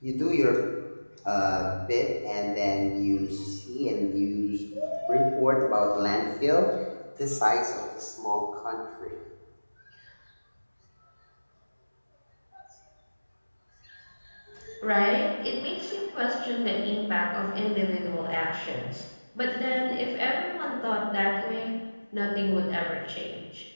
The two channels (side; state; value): both; inverted; correlation -1.00